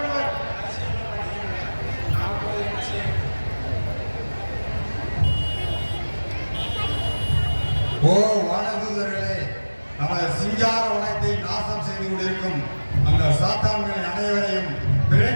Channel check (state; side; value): inverted; both; correlation -1.00